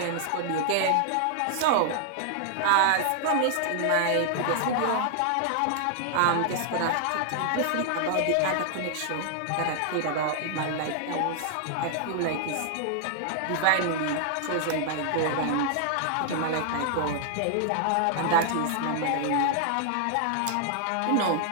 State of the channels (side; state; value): both; different; correlation 0.00